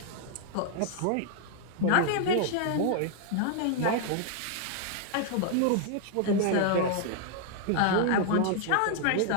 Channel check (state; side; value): different; both; correlation 0.00